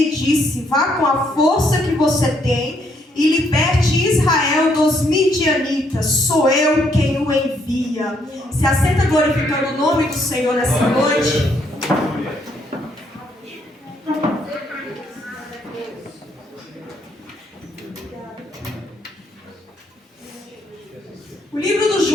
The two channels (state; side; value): normal; both; correlation 0.72